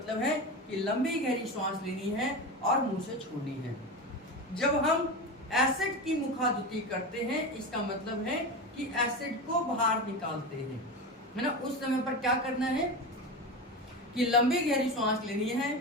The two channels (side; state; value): both; normal; correlation 0.23